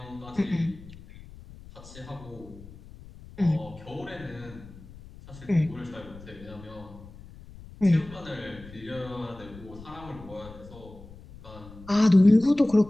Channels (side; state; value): left; noise; rumble, 18 dB below the sound